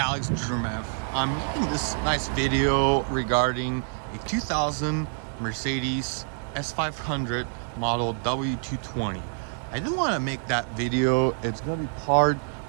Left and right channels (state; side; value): silent; left; digital silence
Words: Drumev. I'm making this nice video regarding a 2000 Mercedes S500 model W220. I didn't want to make that video. It's going to be part